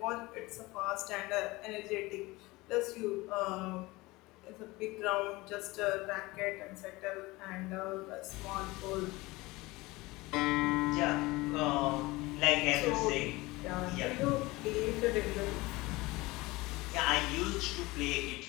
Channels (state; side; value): quieter; right; 21.5 dB